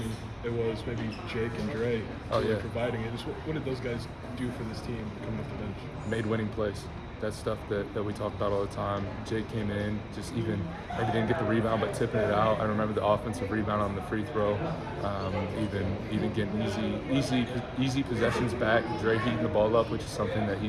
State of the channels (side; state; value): both; identical; correlation 1.00